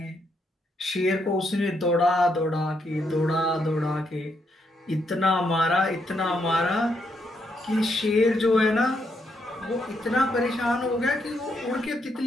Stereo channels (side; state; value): both; normal; correlation 0.77